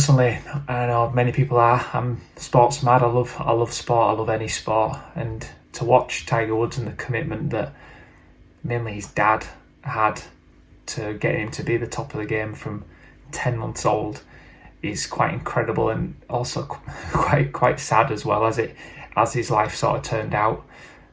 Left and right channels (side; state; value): both; identical; correlation 1.00